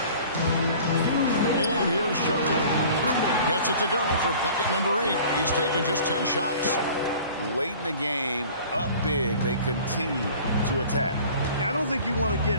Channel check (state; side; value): inverted; both; correlation -0.46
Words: And here's Sharp. Gets it to go for bucket number 8. He's taken just 10 shots. Late in the game, up big, they continue to attack. I don't think you want to